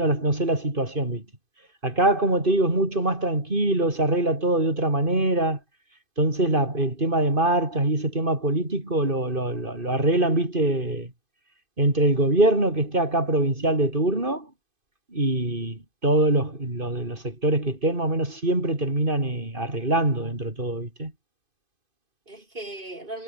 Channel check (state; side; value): late; left; 2.5 ms